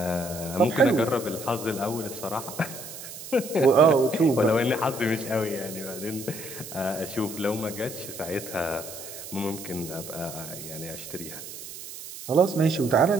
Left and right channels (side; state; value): right; noise; hiss, 12 dB below the sound